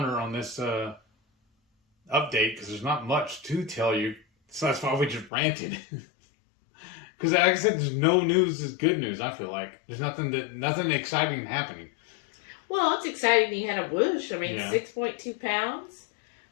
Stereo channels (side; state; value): right; drops out; at 5.3 s